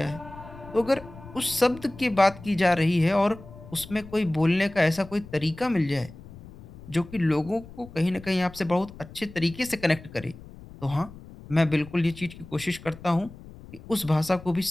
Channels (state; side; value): noise; left; rumble, 17 dB below the sound